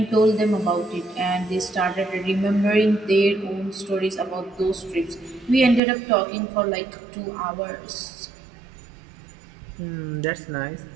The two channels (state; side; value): drops out; left; at 5.8 s